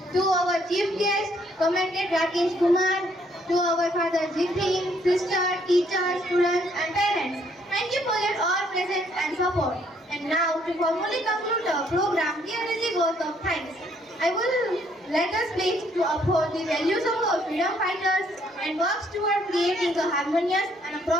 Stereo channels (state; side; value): normal; both; correlation 0.67